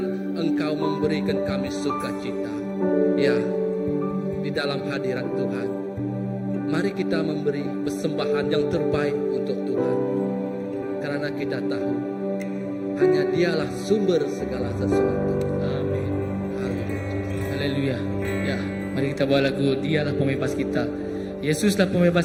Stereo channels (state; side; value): identical; both; correlation 1.00